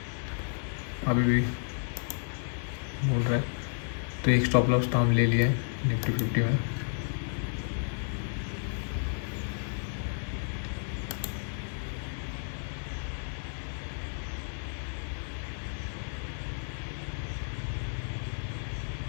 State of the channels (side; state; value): right; silent; 57 dB below the other